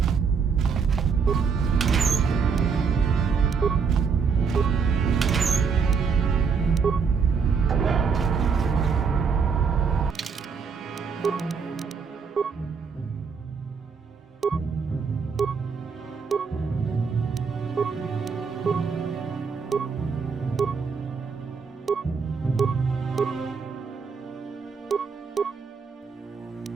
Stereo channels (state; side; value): quieter; left; 5.7 dB